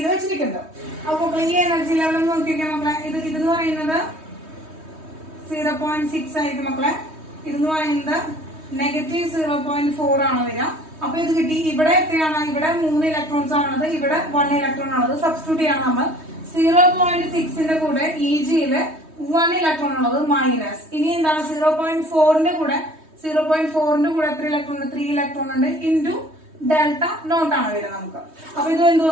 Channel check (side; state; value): left; late; 3.2 ms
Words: വെച്ചിരിക്കുന്നത്. അപ്പൊ ഈ എനർജി ലെവൽ നോക്കിയൊക്കെ മക്കളെ, ഇതെന്ന് പറയുന്നത് 0.6 ആയിരിക്കും മക്കളെ. ഇതെന്ന് പറയുന്നത് -0.4 ആണ് വരിക. അപ്പൊ ഇത് കിട്ടി. ഇവിടെ എത്രയാണ്? ഇവിടെ 3 ഇലക്ട്രോൺസ് ആണുള്ളത്, ഇവിടെ 1 ഇലക്ട്രോൺ ആണുള്ളത്. സബ്സ്റ്റിറ്റ്യൂട്ട് ചെയ്യണം നമ്മൾ. 0.6ന്റെ കൂടെ EGയില് 1 ഇലക്ട്രോൺ ഉള്ളത് മൈനസ്. ഇനി എന്താണ്? 0.4ന്റെ കൂടെ എത്ര ഇലക്ട്രോൺ ഉണ്ട്? 3 ഇലക്ട്രോൺ ഉണ്ട് ഇൻറ്റു ഡെൽറ്റ നോട്ട് ആണ് വരിക നമുക്ക്. അപ്പൊ ഇത് എന്ത്